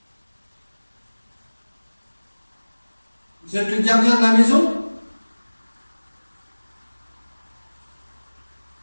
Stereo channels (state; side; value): inverted; both; correlation -1.00